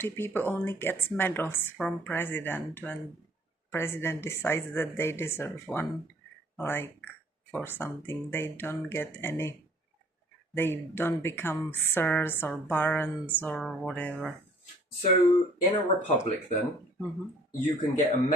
people only get medals from president when president decides that they deserve one, like for something. They don't get any. They don't become sirs or barons or whatever. So in a republic, then you can get a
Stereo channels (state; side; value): normal; both; correlation 0.56